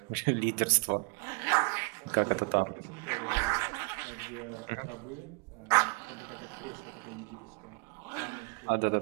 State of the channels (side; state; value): left; quieter; 33.5 dB